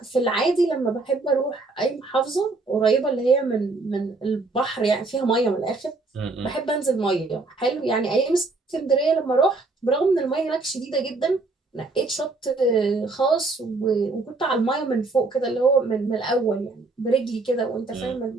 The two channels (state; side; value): quieter; left; 3.5 dB